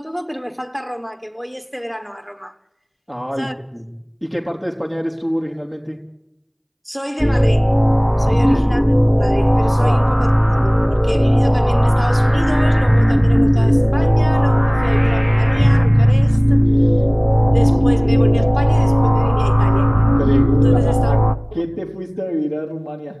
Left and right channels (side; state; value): both; identical; correlation 1.00